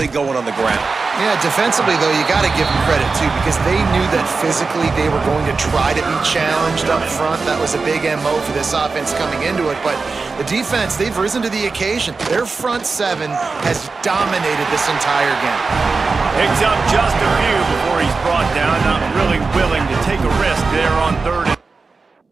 going on the ground. Yeah, defensively, though, you got to give them credit, too, because they knew that physically they were going to try to be challenged up front. That was a big MO for this offense coming into it, but the defense, they've risen to the occasion. Their front seven has dominated this entire game. Picks up just a few before he's brought down, not really willing to take a risk there on third.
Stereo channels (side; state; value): left; quieter; 4.3 dB